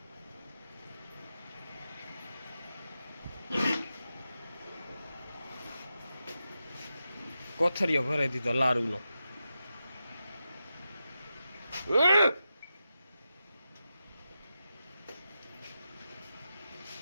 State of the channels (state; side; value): inverted; both; correlation -0.90